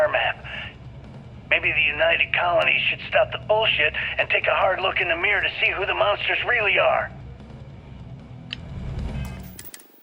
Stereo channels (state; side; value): identical; both; correlation 1.00